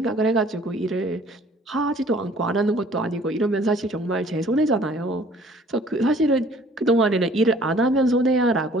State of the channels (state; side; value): normal; both; correlation 0.54